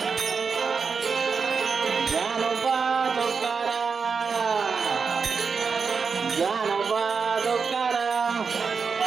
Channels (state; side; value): quieter; left; 5.4 dB